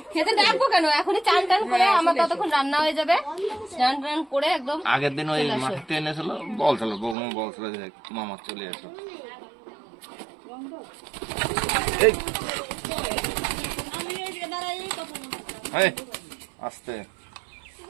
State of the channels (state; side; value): drops out; left; at 7.2 s